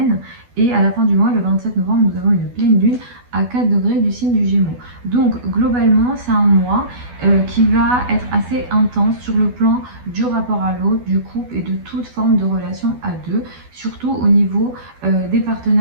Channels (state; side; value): late; left; 12 ms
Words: Et à la fin du mois, le 27 novembre, nous avons une pleine lune à 4 degrés du signe du Gémeaux. Donc globalement, c'est un mois qui va être assez intense sur le plan du rapport à l'autre, du couple et de toute forme de relation à deux, surtout au niveau des